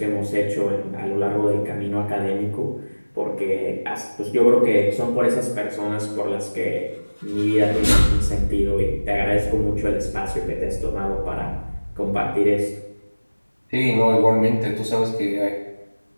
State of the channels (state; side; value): inverted; both; correlation -1.00